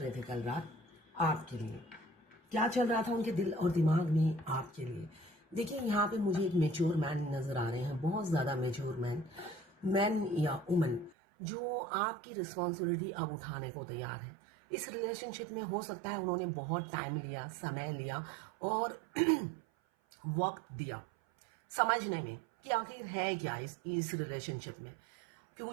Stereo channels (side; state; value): left; drops out; at 11.2 s